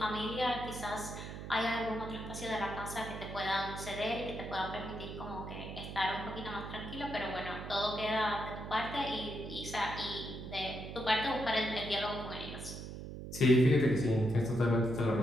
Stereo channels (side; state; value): right; noise; hum, 9 dB below the sound